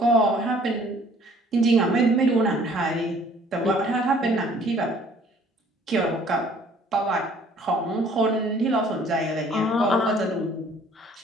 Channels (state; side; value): normal; both; correlation 0.57